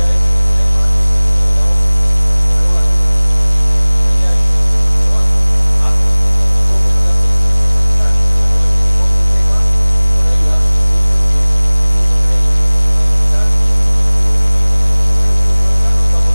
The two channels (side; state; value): both; inverted; correlation -1.00